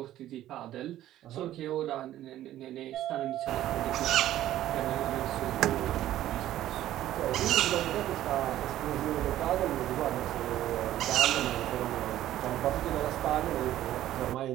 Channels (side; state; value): left; quieter; 13.2 dB